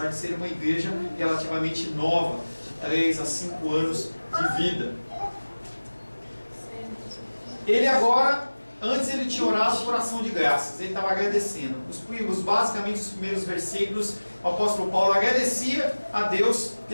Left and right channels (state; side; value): inverted; both; correlation -1.00